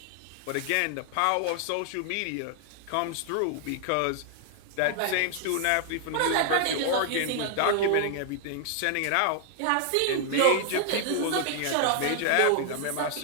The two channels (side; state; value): both; different; correlation 0.00